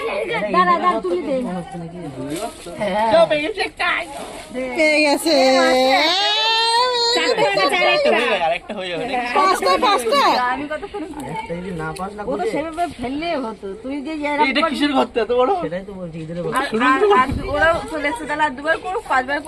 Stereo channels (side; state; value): both; identical; correlation 1.00